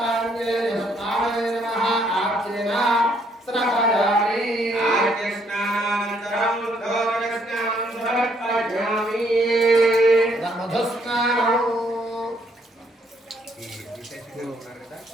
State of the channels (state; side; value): normal; both; correlation 0.69